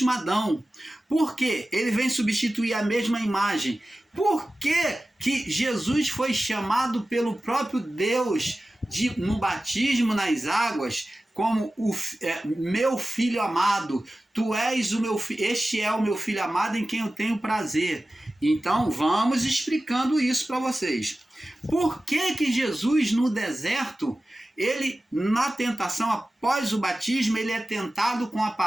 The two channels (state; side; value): normal; both; correlation 0.95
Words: Adão? Por que ele vem substituir a mesma imagem? Por que Jesus foi chamado pelo próprio Deus no batismo nas águas como meu filho amado? Tu és o meu filho, este é o meu filho amado em quem eu tenho prazer. Então vamos explicando isso para vocês. Por que Jesus no deserto, ele na tentação após o batismo, ele é tentado com a